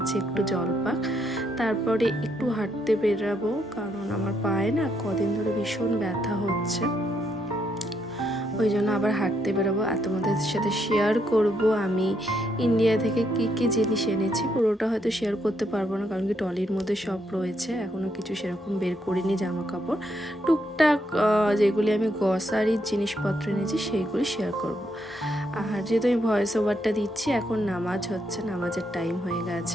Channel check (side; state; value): both; normal; correlation 0.76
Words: একটু জল পাক, তারপরে একটু হাঁটতে বেরাবো, কারণ আমার পায়ে না কদিন ধরে ভীষণ ব্যথা হচ্ছে, ওই জন্য আবার হাঁটতে বেরোবো। আর তোমাদের সাথে শেয়ার করব আমি ইন্ডিয়া থেকে কি কি জিনিস এনেছি। পুরোটা হয়তো শেয়ার করতে পারবো না, কারণ কি ট্রলির মধ্যে সব রয়েছে, এখনও কিছু সেরকম বের করিনি। জামা কাপড় টুকটাক যেগুলি আমি গ্রসারির জিনিসপত্র এনেছি সেইগুলি শেয়ার করব। আর যেহেতু আমি ভয়েস ওভারটা দিচ্ছি, এখন নামাজ হচ্ছে, নামাজের টাইম হয়ে